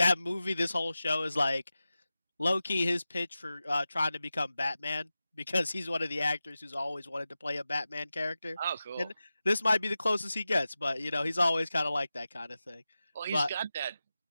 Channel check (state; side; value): inverted; both; correlation -0.94